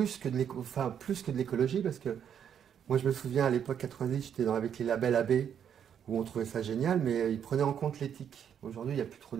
que de l'écologie, parce que moi je me souviens à l'époque 90, j'étais avec les labels AB, où on trouvait ça génial, mais ils prenaient en compte l'éthique. Aujourd'hui, il n'y a plus trop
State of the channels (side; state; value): left; quieter; 8.6 dB